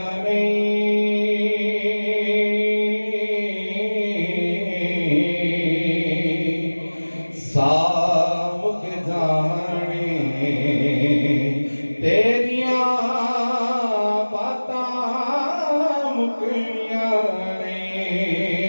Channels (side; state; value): both; inverted; correlation -1.00